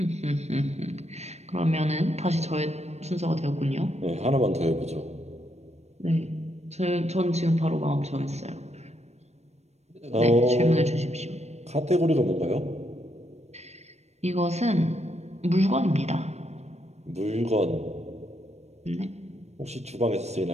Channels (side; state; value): left; late; 0.32 ms